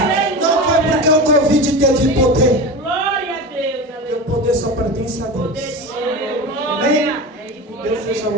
Não foi porque o Covid teve poder. E o poder só pertence a Deus. Amém? Deus seja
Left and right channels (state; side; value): normal; both; correlation 0.26